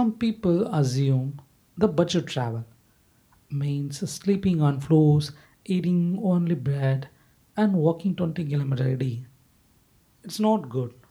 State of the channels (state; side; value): identical; both; correlation 1.00